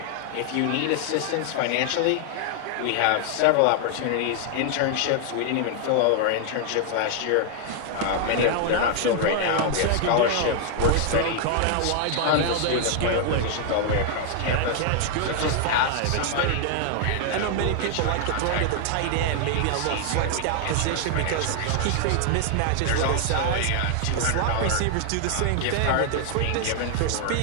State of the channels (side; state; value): both; different; correlation 0.00